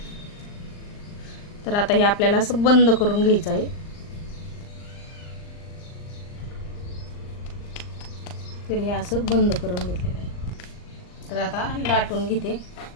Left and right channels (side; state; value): right; late; 39 ms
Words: तर आता हे आपल्याला असं बंद करून घ्यायचं आहे. तर हे असं बंद करून घेतलेलं आहे. तर आता लाटून घेते.